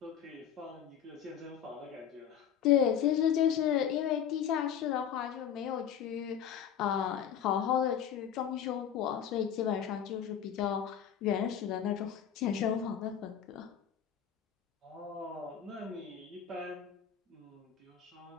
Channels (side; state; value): right; quieter; 8.9 dB